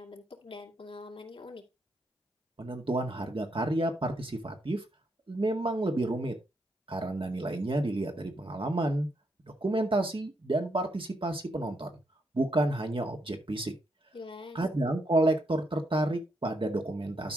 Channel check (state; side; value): normal; both; correlation 0.78